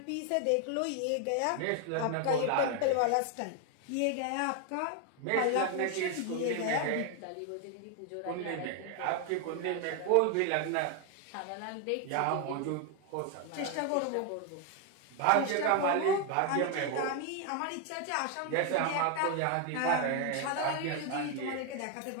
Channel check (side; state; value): both; different; correlation 0.01